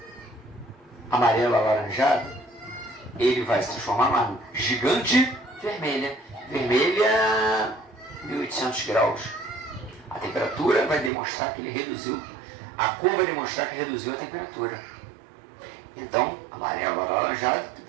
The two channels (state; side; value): drops out; left; at 11.1 s